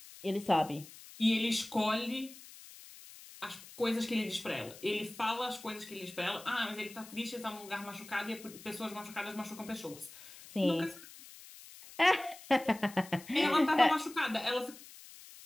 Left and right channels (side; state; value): left; noise; hiss, 18 dB below the sound